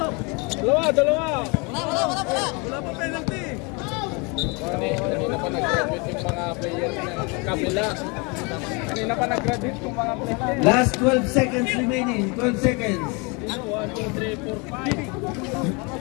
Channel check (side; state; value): right; quieter; 30.2 dB